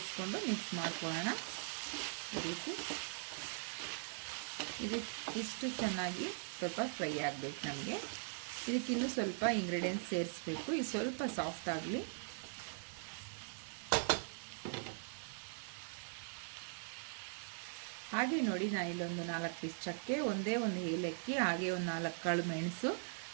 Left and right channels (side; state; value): left; silent; 50 dB below the other